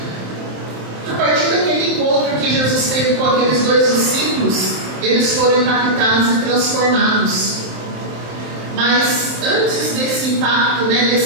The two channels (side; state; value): left; late; 27 ms